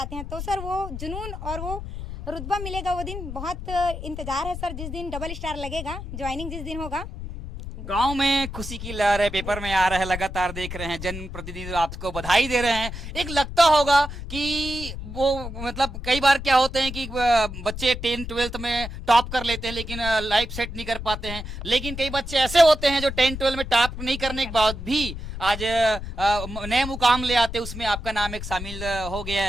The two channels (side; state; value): left; noise; rumble, 8 dB below the sound